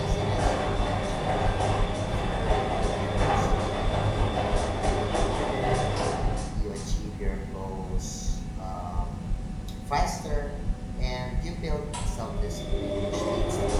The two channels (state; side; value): identical; both; correlation 1.00